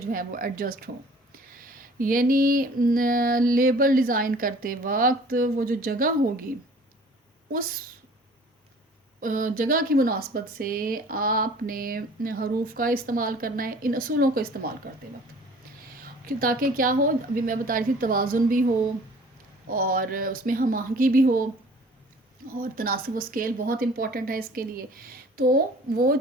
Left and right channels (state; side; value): normal; both; correlation 0.50